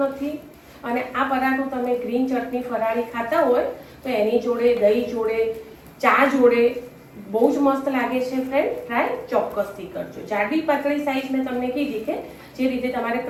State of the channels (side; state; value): both; identical; correlation 1.00